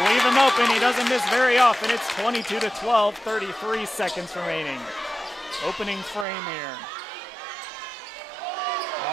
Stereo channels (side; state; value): left; drops out; at 6.2 s